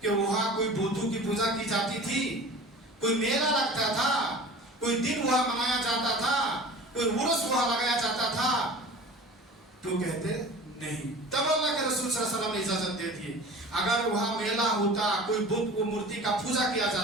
کہ وہاں کوئی بودھو کی پوجا کی جاتی تھی، کوئی میلہ لگتا تھا، کوئی دن وہاں منایا جاتا تھا، کوئی عرس وہاں لگایا جاتا تھا؟ تو کہتے نہیں. تب اللہ کے رسول صلی اللہ علیہ وسلم نے اجازت دے دی. اگر وہاں میلہ ہوتا، کوئی بت کو مورتی کا پوجا کیا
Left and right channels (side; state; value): both; normal; correlation 0.39